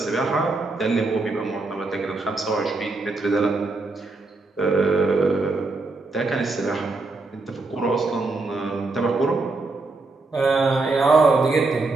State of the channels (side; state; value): left; quieter; 3.4 dB